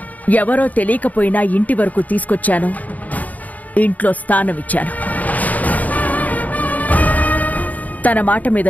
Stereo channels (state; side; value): late; right; 0.075 ms